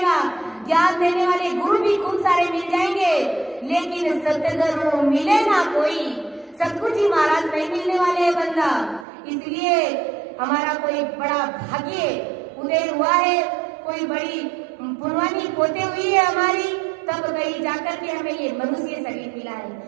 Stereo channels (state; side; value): drops out; left; at 9.1 s